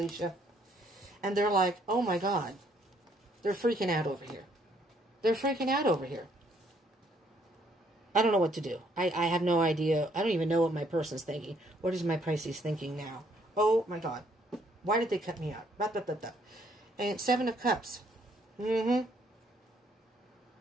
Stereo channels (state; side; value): normal; both; correlation 0.67